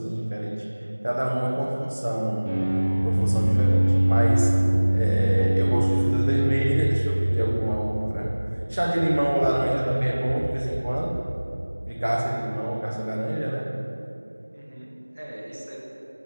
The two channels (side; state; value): both; inverted; correlation -1.00